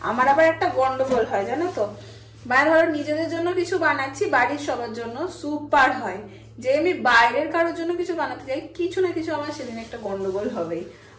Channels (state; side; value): identical; both; correlation 1.00